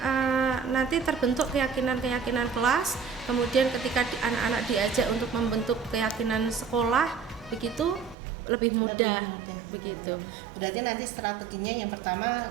nanti terbentuk keyakinan kelas, kemudian ketika anak-anak diajak untuk membentuk keyakinan sekolah begitu lebih mudah begitu. Berarti nanti strateginya yang pertama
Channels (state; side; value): drops out; left; at 8.2 s